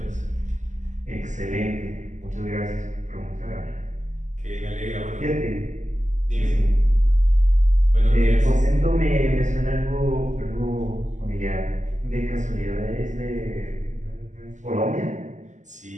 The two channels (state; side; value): late; left; 0.35 ms